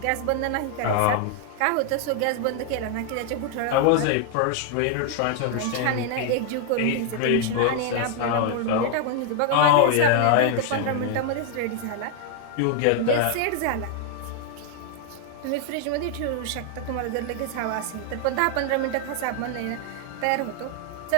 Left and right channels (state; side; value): different; both; correlation 0.00